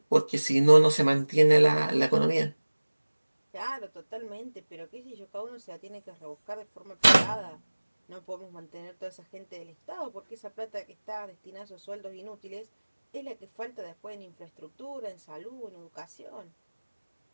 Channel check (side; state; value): both; inverted; correlation -1.00